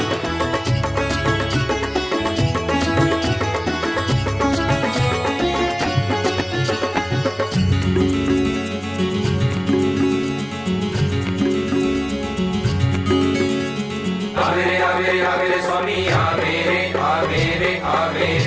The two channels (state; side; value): identical; both; correlation 1.00